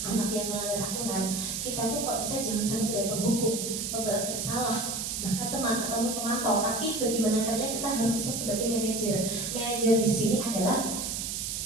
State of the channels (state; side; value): noise; right; hiss, 3 dB below the sound